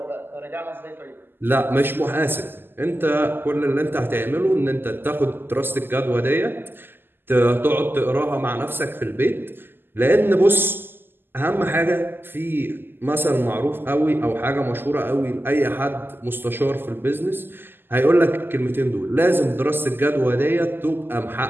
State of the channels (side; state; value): left; late; 0.098 ms